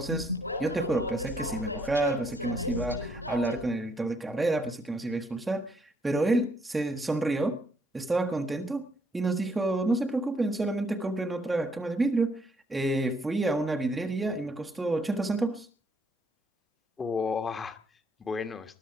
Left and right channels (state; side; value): normal; both; correlation 0.70